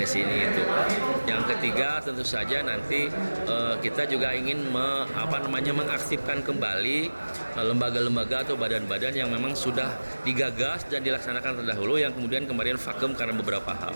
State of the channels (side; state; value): both; inverted; correlation -1.00